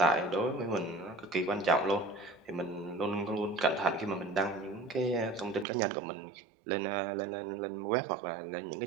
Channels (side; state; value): left; drops out; at 5.7 s